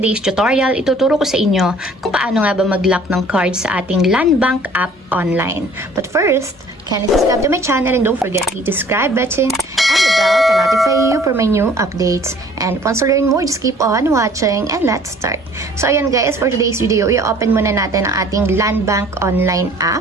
tutorial, ituturo ko sa inyo kung paano nga ba mag-lock ng card sa ating Landbank app online. But first, kindly subscribe to my channel and don't forget to hit the subscribe button and the bell to notify you for my new updates. And once you learn more, just keep on watching and let's start. So ayan guys, for today's video, i-open muna natin ang ating Landbank online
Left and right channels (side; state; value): both; normal; correlation 0.53